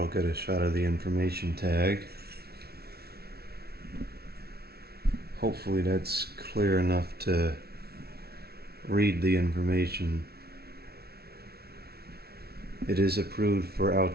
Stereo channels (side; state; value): left; late; 0.45 ms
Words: get a shot of the information tag. Hopefully that's clear enough to read the information. It is approved for